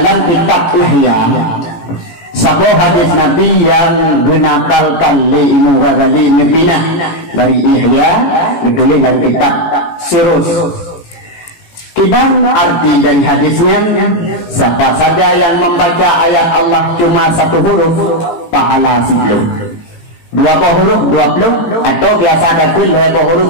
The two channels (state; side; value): late; right; 17 ms